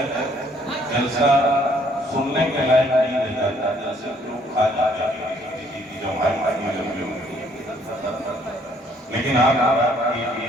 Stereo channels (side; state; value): both; normal; correlation 0.64